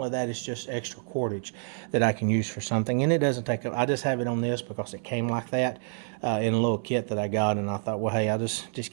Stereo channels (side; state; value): left; silent; 59 dB below the other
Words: that, it's just extra cordage that I can use for something, and it doesn't take up. I just have it on this because it came like that in a little kit that I got, and I thought, well, hey, I'll just